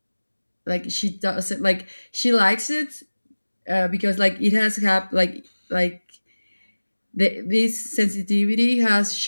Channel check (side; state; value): both; inverted; correlation -1.00